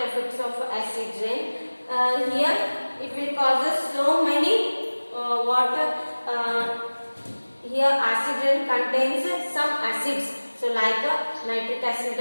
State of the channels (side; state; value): both; inverted; correlation -1.00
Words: effects of acid rain, here it will causes so many water. Here acid rain contains some acids, so like nitric